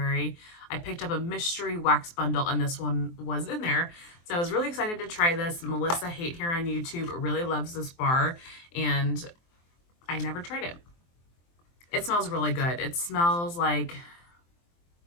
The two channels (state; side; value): late; right; 23 ms